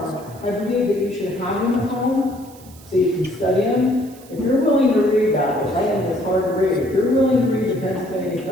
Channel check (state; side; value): noise; right; hiss, 23 dB below the sound